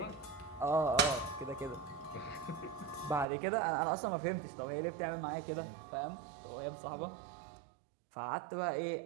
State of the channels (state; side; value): drops out; left; at 3.2 s